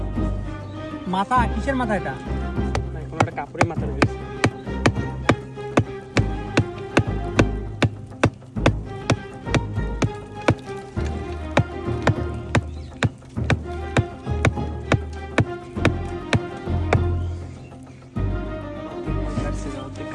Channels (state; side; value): identical; both; correlation 1.00